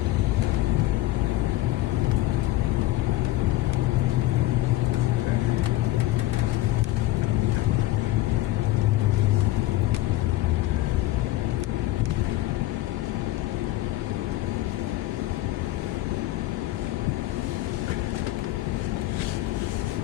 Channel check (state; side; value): quieter; right; 16.2 dB